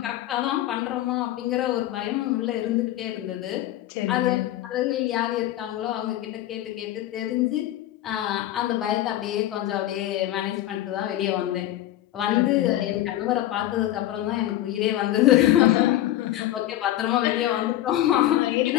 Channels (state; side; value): quieter; right; 13.9 dB